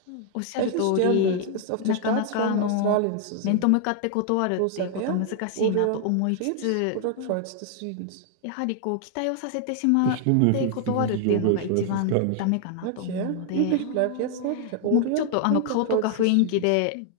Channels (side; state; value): both; different; correlation 0.00